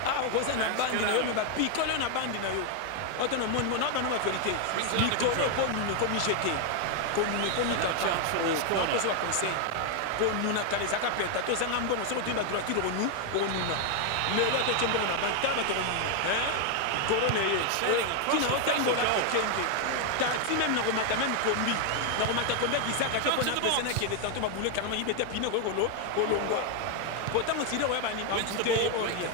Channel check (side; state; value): both; different; correlation 0.00